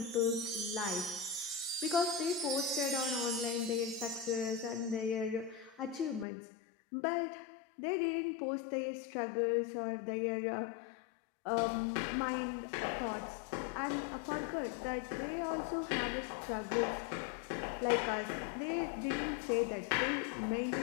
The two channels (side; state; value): right; drops out; at 6.2 s